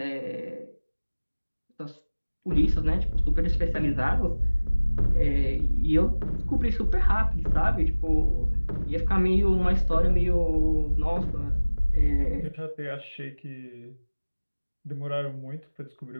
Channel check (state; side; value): inverted; both; correlation -1.00